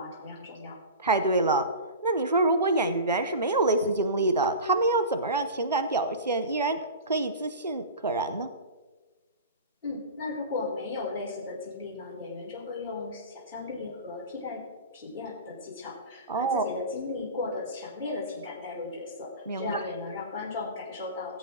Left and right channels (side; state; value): both; inverted; correlation -0.32